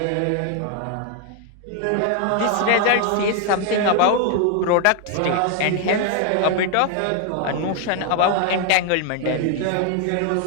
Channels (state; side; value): different; both; correlation 0.00